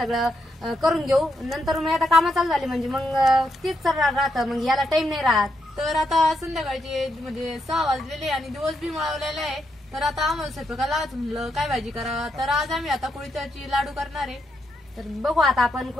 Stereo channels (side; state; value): both; normal; correlation 0.80